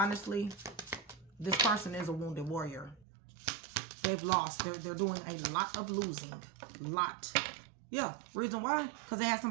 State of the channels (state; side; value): drops out; left; at 3.1 s